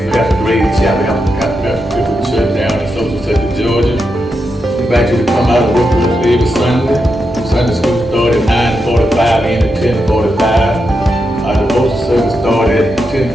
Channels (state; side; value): normal; both; correlation 0.86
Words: pastor Grace Chapel, church down in Social Sector, Georgia. We invite you to come out and work with us every Sunday. Sunday school started at 9:45 and at 10:45. Our devotion service started at